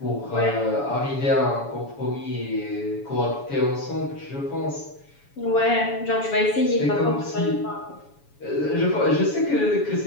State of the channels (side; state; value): right; late; 7.1 ms